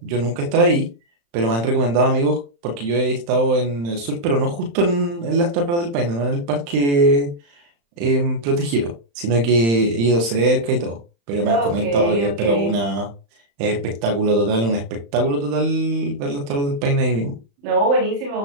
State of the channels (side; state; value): left; late; 35 ms